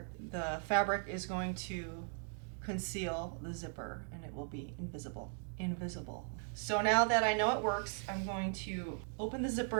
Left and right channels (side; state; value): left; silent; 52 dB below the other